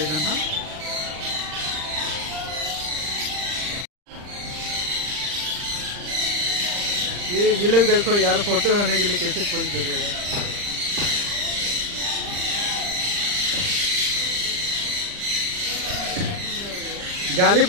जन हां ये लोग देखो यार फोटो होने के लिए कैसे पोज दे रहे हैं जाली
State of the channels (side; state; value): left; late; 39 ms